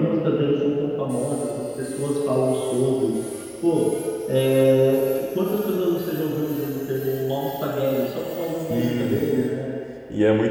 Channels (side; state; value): both; identical; correlation 1.00